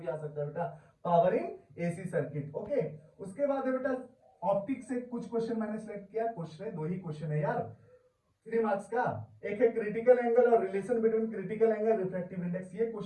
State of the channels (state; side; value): identical; both; correlation 1.00